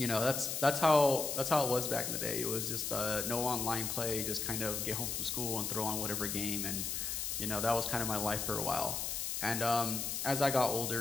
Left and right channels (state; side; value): noise; left; hiss, 2 dB below the sound